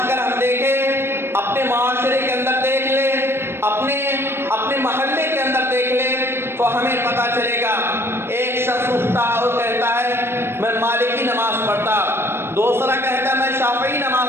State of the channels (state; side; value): late; left; 0.12 ms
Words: اگر ہم دیکھیں، اپنے معاشرے کے اندر دیکھ لیں، اپنے محلے کے اندر دیکھ لیں تو ہمیں پتہ چلے گا ایک شخص اٹھتا اور کہتا ہے میں مالکی نماز پڑھتا، دوسرا کہتا میں شافعی نماز